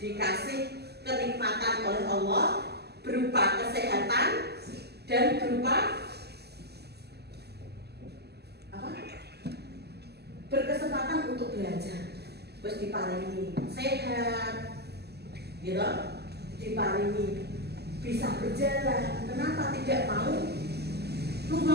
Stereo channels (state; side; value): late; left; 0.47 ms